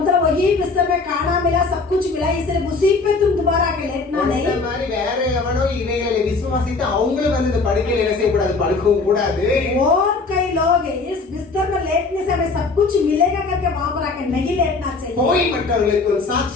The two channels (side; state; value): right; quieter; 4.0 dB